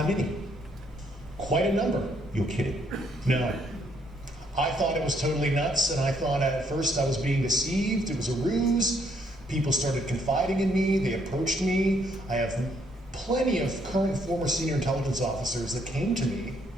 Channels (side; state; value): both; normal; correlation 0.71